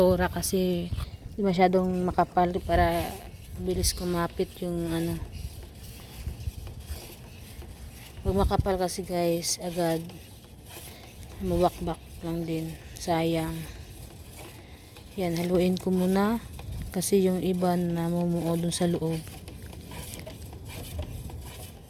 kasi di masyadong makapal para bilis kumapit yung Pag makapal kasi guys, agad mawakbak lang din. Sayang. Yan, haluin ko muna kasi yung iba na mumuo dun sa loob.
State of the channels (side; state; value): both; identical; correlation 1.00